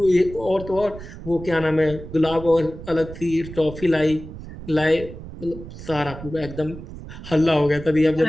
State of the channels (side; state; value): right; noise; rumble, 13 dB below the sound